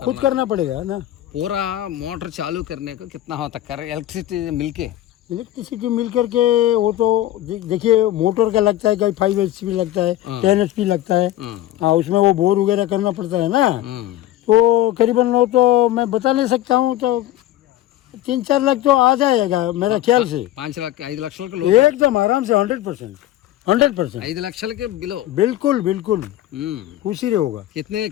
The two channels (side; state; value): right; quieter; 14.1 dB